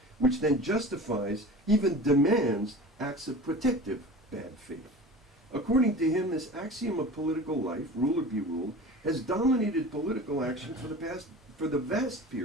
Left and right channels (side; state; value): both; normal; correlation 0.37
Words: which then justifies, even demands, acts of protective bad faith. According to him, this axiom of political life, ruler be ruled, has dominated political action for the vast